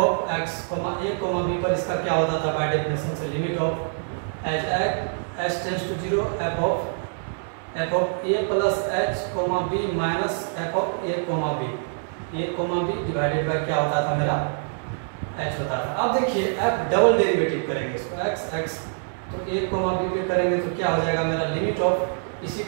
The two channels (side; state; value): left; silent; digital silence